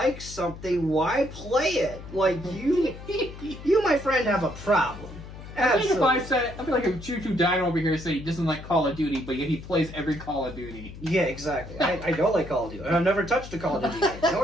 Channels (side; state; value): left; noise; hum, 14 dB below the sound